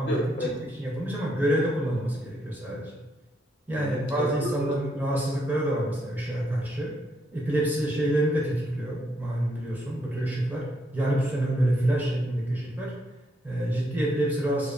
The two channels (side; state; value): both; normal; correlation 0.75